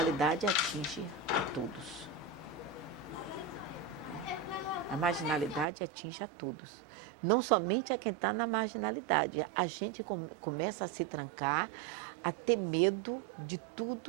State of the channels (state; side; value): drops out; left; at 5.7 s